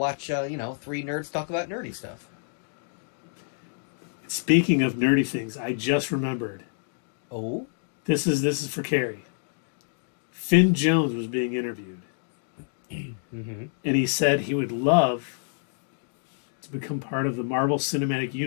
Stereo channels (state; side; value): silent; right; digital silence